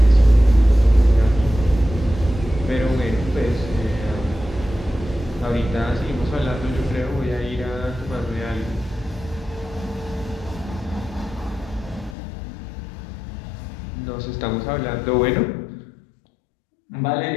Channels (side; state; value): right; drops out; at 12.2 s